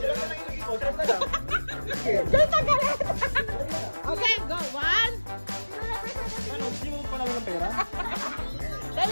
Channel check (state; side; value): inverted; both; correlation -1.00